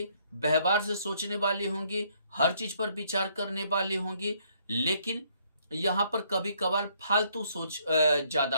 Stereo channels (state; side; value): inverted; both; correlation -0.67